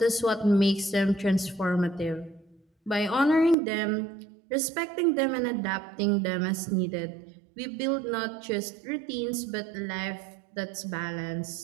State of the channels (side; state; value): left; drops out; at 3.6 s